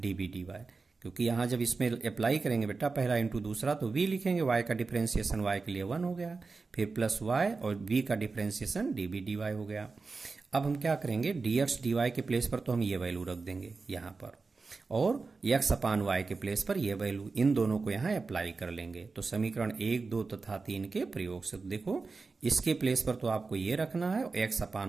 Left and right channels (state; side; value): quieter; left; 4.2 dB